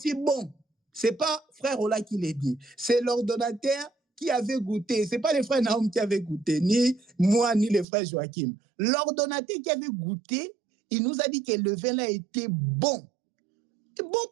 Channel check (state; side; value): drops out; left; at 7.9 s